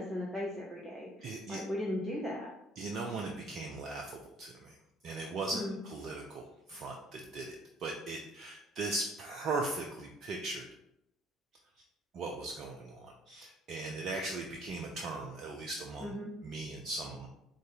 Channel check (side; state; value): both; normal; correlation 0.59